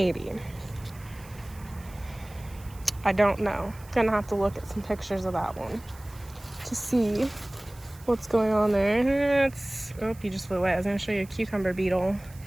I don't know. Gonna have to look at some pictures of that one to see what's going on there. Oh, you just flew away. I was gonna show you a cucumber beetle.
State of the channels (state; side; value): noise; right; hiss, 23 dB below the sound